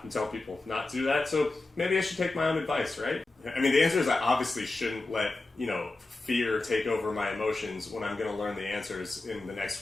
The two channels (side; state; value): right; quieter; 3.2 dB